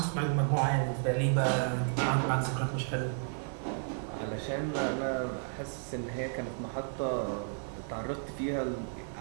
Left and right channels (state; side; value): silent; left; digital silence